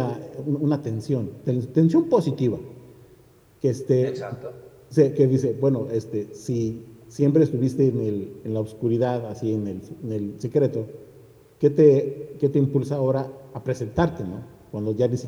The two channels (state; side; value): identical; both; correlation 1.00